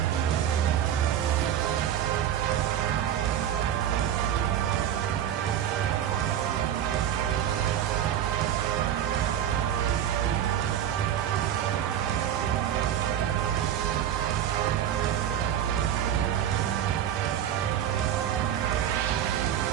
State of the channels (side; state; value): left; quieter; 10.3 dB